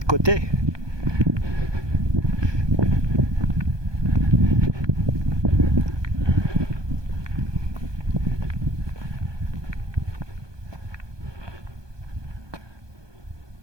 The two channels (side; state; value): left; late; 1.2 ms